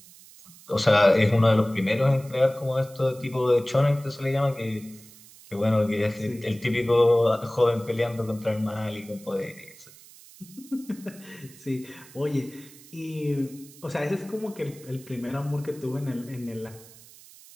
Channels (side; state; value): right; noise; hiss, 22 dB below the sound